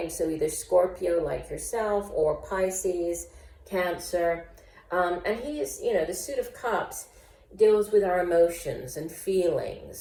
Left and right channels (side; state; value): both; identical; correlation 1.00